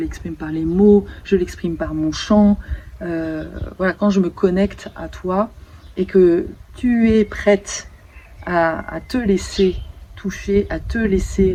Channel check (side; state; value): both; identical; correlation 1.00